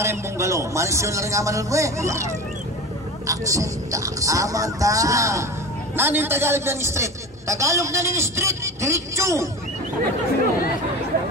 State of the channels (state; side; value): normal; both; correlation 0.31